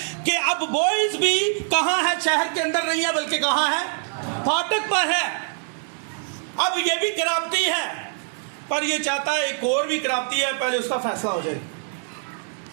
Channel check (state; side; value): silent; left; 63 dB below the other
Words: कि अब बॉयज भी कहां है? शहर के अंदर नहीं है, बल्कि कहां है? फाटक पर है। अब ये भी खराबती है, पर ये चाहता है एक और भी खराबती है, पहले उसका फैसला हो जाए।